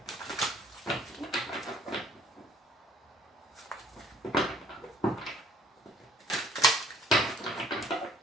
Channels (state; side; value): normal; both; correlation 0.58